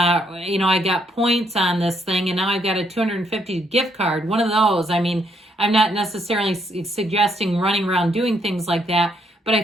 you know, I got points on this thing, and now I've got a $250 gift card. One of those. I mean, I'm not necessarily suggesting running around doing things like that, but I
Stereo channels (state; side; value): normal; both; correlation 0.73